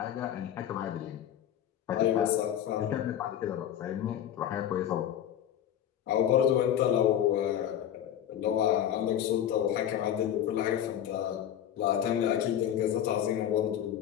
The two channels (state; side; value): quieter; right; 10.5 dB